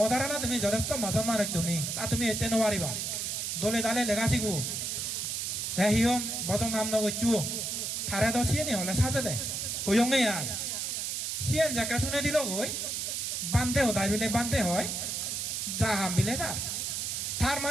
না তুমি যথেষ্ট মাজন মানুষ তুমি তা তুমি এতে নোৱাৰিবা দলে দালে লেখা শিখো হে হিয়ম বজং নাম নগৈচু থারে তো সিয়ে নি হলে সাজে দে হইয়ঙ্গে আয় সিয়েন জাকা শুনে দিল গই বান্ধে হদাই বিলে বান্ধে হয় জাহাম বিলে তার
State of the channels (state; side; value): noise; right; hiss, 2 dB below the sound